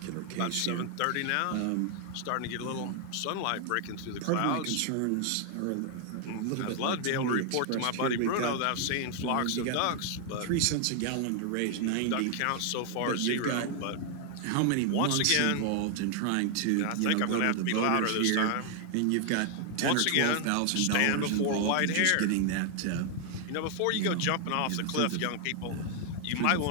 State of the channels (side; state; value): both; different; correlation 0.00